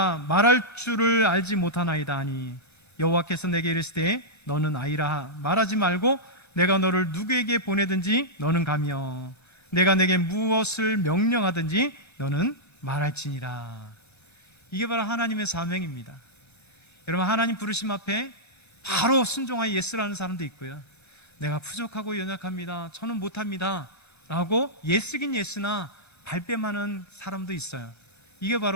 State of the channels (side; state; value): right; late; 1.3 ms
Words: 말할 줄을 알지 못하나이다 하니 여호와께서 내게 이르시되 너는 아이라 말하지 말고 내가 너를 누구에게 보내든지 너는 가며 내가 내게 무엇을 명령하든지 너는 말할지니라. 이게 바로 하나님의 사명입니다. 여러분, 하나님 부르심 앞에 바로 순종하여 예스라는 사람도 있고요. 내가 부족하고 연약합니다, 저는 못합니다 라고 예스긴 예스나 발뺌하는 사람도 있어요. 이게